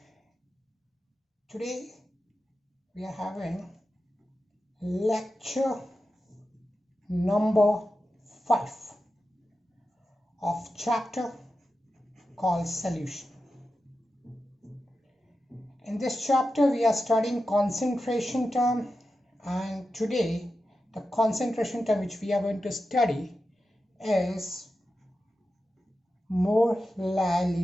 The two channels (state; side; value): normal; both; correlation 0.91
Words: today we are having lecture number 5 of chapter called solution. In this chapter we are studying concentration term, and today the concentration term which we are going to study is